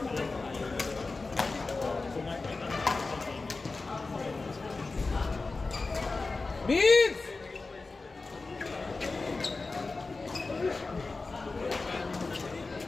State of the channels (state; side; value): quieter; right; 3.7 dB